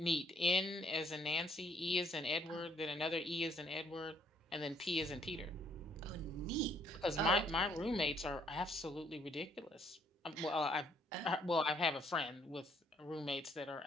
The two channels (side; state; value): both; normal; correlation 0.66